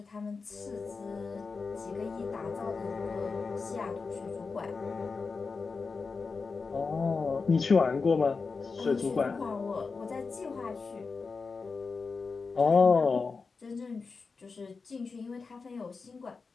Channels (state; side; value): quieter; right; 4.6 dB